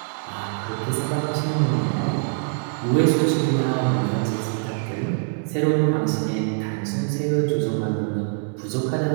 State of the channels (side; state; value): left; silent; digital silence